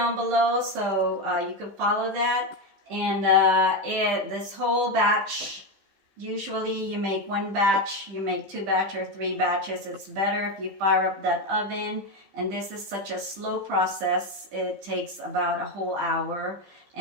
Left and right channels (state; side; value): late; left; 15 ms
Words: below, so you can follow that. And this whole batch, usually you make one batch, you make 2 batch or 3 batches. It's better if you fire up that oven. And this is such a slow process. It takes about a whole hour,